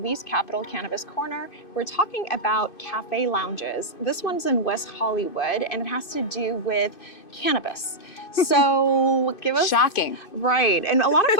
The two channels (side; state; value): right; late; 2.5 ms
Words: Capital Cannabis Corner. We're talking about cafe lounges. This one's in West Hollywood and it has to do with cannabis. So give us... Shocking. Right, and a lot of